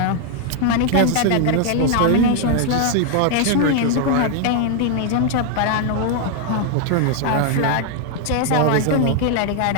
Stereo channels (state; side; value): different; both; correlation 0.00